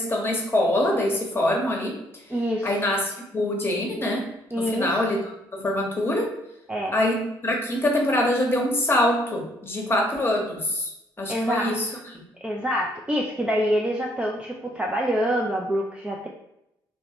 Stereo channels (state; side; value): normal; both; correlation 0.68